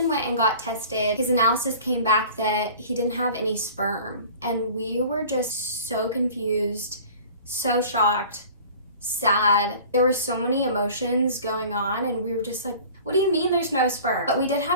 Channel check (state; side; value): inverted; both; correlation -0.44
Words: went and got tested. His analysis came back that he didn't have any sperm. And we were just so confused, so shocked, sad. There were so many emotions going on and we were just like, what do you mean there's no sperm? But we did